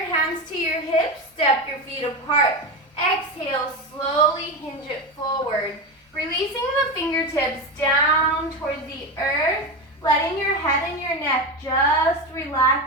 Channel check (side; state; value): both; normal; correlation 0.19